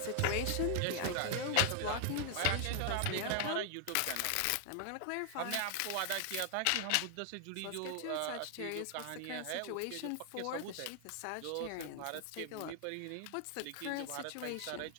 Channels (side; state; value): both; different; correlation 0.00